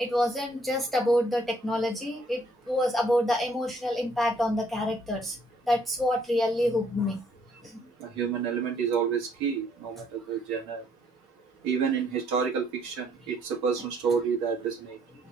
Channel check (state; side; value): normal; both; correlation 0.66